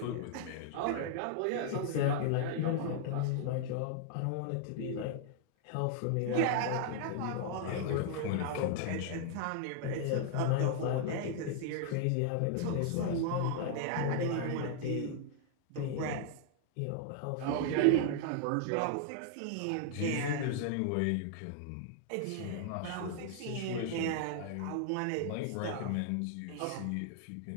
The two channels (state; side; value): different; both; correlation 0.00